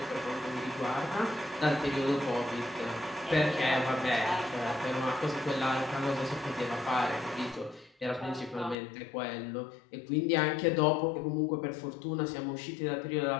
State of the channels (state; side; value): drops out; right; at 8.8 s